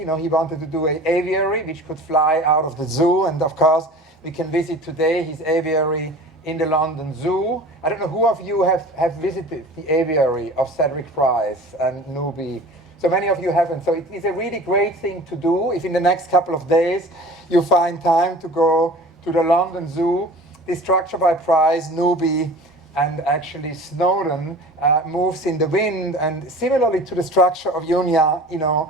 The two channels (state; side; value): normal; both; correlation 0.41